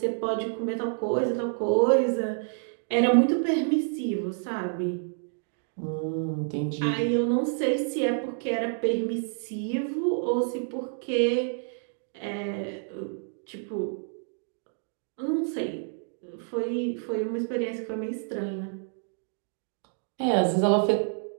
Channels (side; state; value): left; silent; 59 dB below the other